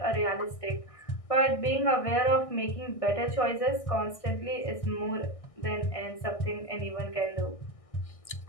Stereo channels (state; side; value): late; right; 1.6 ms